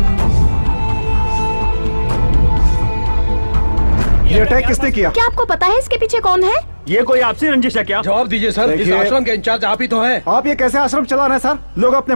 ये अटैक किसने किया? क्या आपको पता है इसके पीछे कौन है? ये कोई आपसी रंजिश है क्या? जवाब दीजिए सर, इस आश्रम के इंचार्ज आप ही तो हैं। आप ये कैसे आश्रम चला रहे हैं सर? लोग अपने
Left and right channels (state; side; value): inverted; both; correlation -1.00